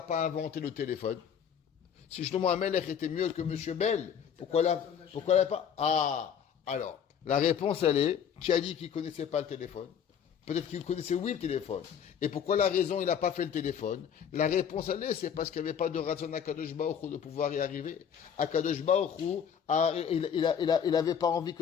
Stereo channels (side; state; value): right; quieter; 8.0 dB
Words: pas inventé le téléphone? Si Shlomo HaMelech était mieux que Monsieur Bell, pourquoi il n'a pas? Ah, alors. La réponse, elle est, qui a dit qu'il ne connaissait pas le téléphone? Peut-être qu'il connaissait, oui, le téléphone. Et pourquoi la raison, il n'a pas fait le téléphone? La réponse, elle est, c'est parce qu'il n'y avait pas de raison à Akadosh Baruch Hu de pouvoir y arriver. Akadosh Baruch Hu, il n'avait pas envie